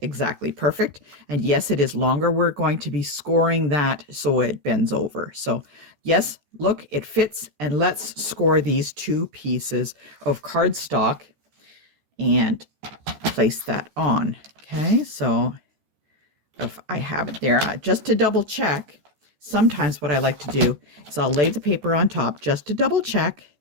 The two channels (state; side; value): late; left; 14 ms